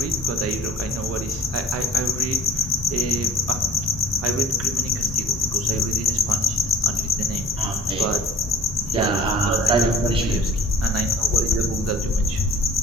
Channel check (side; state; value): both; normal; correlation 0.43